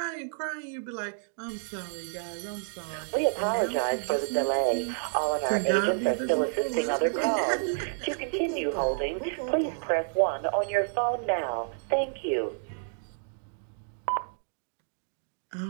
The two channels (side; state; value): left; silent; digital silence